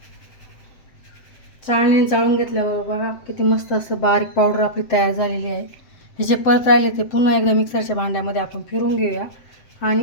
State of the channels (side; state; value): right; late; 7.6 ms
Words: चाळणीने चाळून घेतल्यावर बघा किती मस्त असं बारीक पावडर आपली तयार झालेली आहे. हे जे परत राहिले ते पुन्हा एकदा मिक्सरच्या भांड्यामध्ये आपण फिरवून घेऊया